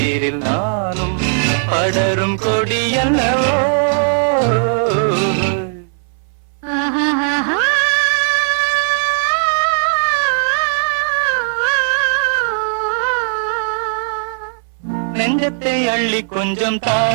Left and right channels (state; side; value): silent; left; 63 dB below the other